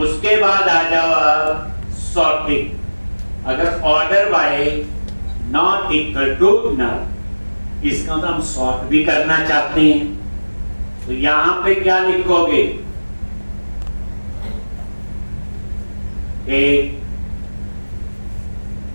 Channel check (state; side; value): inverted; both; correlation -1.00